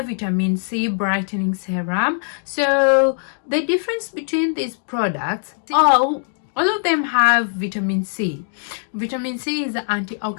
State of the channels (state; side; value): silent; right; digital silence